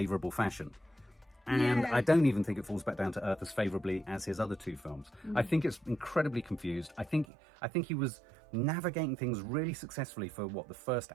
fashion. And I don't even think it falls back down to earth as favourably as his other 2 films. I think it's incredibly confused. I think he was navigating things really successfully for the first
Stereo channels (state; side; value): drops out; left; at 7.2 s